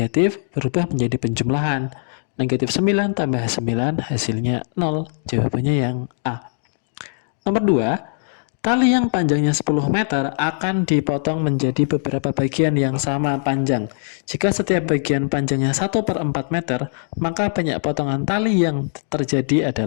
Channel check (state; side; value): silent; right; digital silence